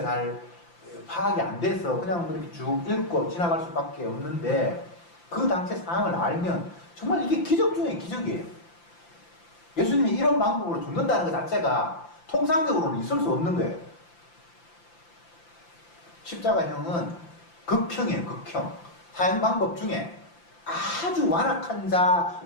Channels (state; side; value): late; right; 5.8 ms